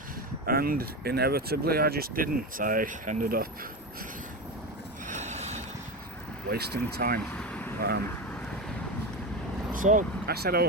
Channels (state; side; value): normal; both; correlation 0.19